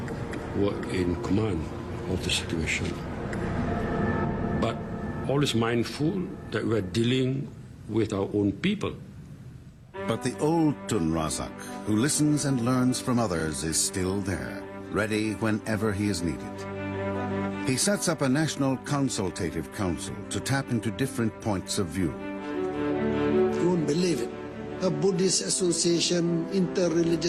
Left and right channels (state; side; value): identical; both; correlation 1.00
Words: were in command of the situation. But always mindful that we're dealing with our own people. But the old Tun Razak, who listens and learns from others, is still there, ready whenever he is needed. He sets up a national consultative council to tap into different points of view. You won't believe it. A Buddhist association,